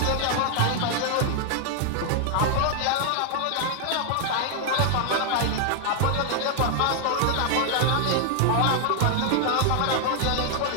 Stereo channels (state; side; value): different; both; correlation 0.00